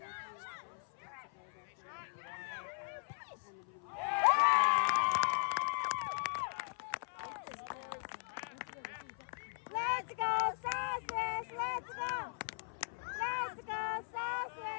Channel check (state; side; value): silent; right; 52 dB below the other